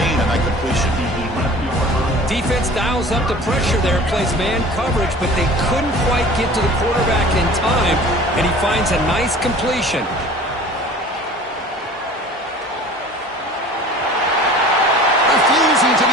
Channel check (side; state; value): both; normal; correlation 0.44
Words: on that completion. Defense dials up the pressure there, plays man coverage, but they couldn't quite get to the quarterback in time, and he finds a nice completion. Refusing to